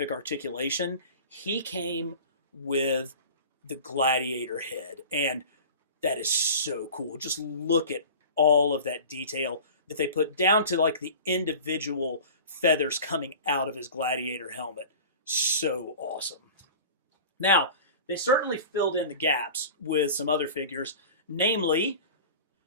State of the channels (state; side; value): inverted; both; correlation -0.38